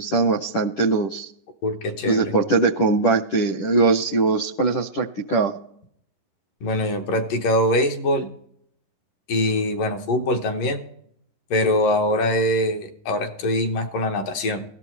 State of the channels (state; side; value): late; right; 11 ms